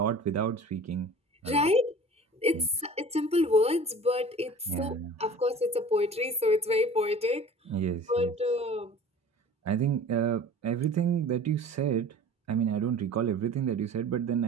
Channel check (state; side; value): normal; both; correlation 0.41